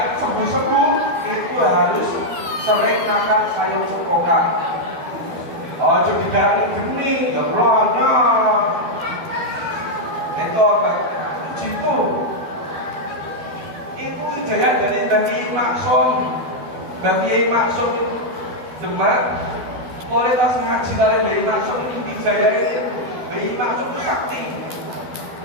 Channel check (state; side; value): late; left; 12 ms